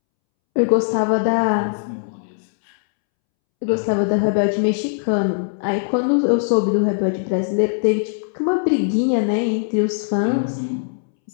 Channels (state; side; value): silent; right; 66 dB below the other